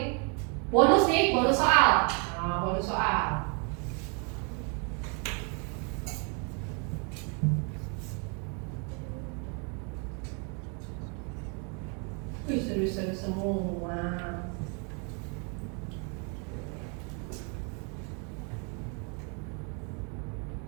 Bonus nih, bonus soal. Nah, bonus soal. Wih, serius-serius semua.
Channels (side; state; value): left; quieter; 36.7 dB